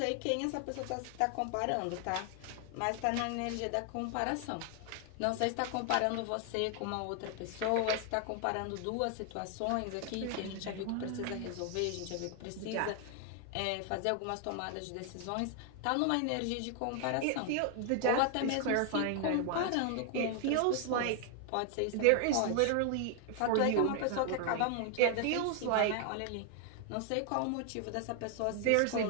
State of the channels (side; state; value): both; different; correlation 0.00